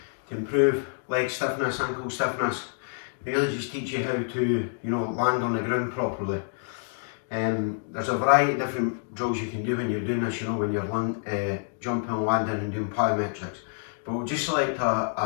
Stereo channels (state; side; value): silent; right; digital silence